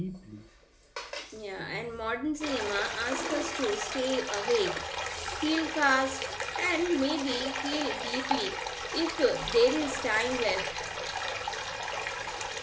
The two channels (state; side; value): identical; both; correlation 1.00